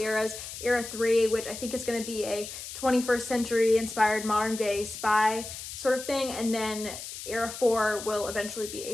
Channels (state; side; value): noise; left; hiss, 10 dB below the sound